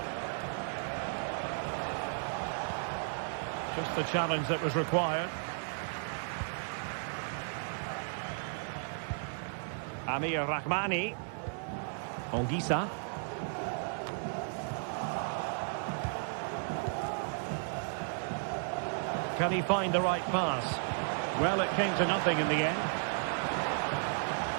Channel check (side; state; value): left; silent; digital silence